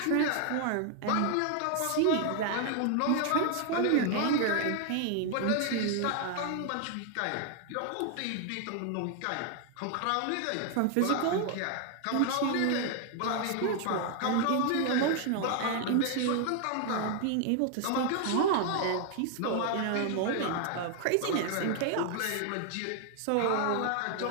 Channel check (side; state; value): both; different; correlation 0.00